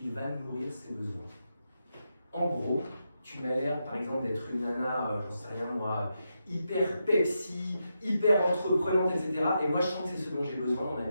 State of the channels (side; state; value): both; inverted; correlation -0.85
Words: il va nourrir ses besoins. En gros, tu m'as l'air, par exemple, d'être une nana, j'en sais rien moi, hyper Pepsi, hyper entreprenante, etc. Et moi, je sens que c'est ce dont j'ai besoin dans ma